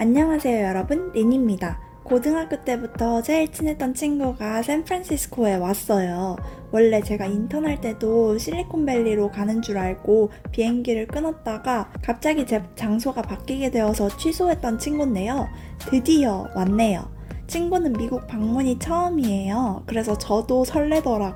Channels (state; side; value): identical; both; correlation 1.00